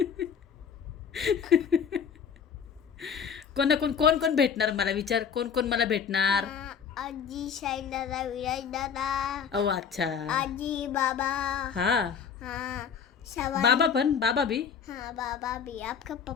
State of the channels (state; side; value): quieter; right; 7.1 dB